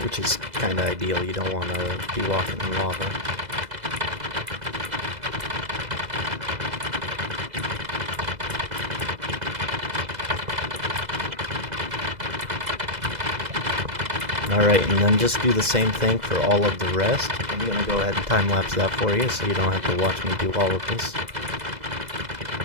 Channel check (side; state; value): left; late; 2.0 ms